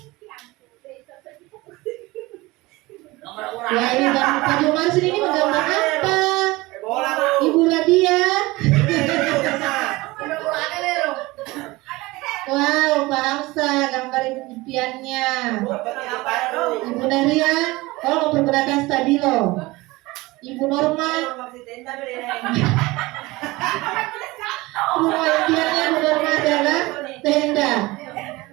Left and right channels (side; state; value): left; quieter; 21.2 dB